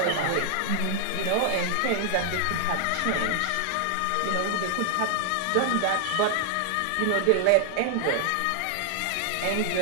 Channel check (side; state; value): both; different; correlation 0.00